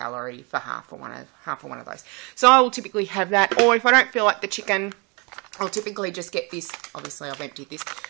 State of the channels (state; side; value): quieter; left; 30.1 dB